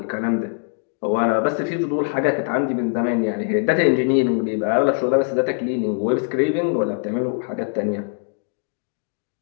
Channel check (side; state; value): right; silent; 64 dB below the other